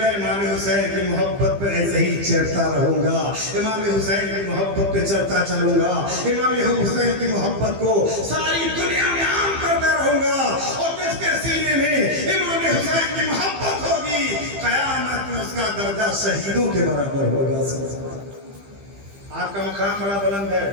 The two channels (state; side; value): late; left; 15 ms